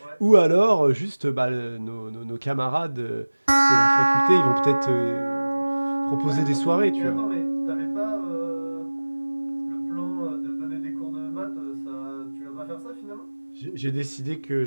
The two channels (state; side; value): inverted; both; correlation -1.00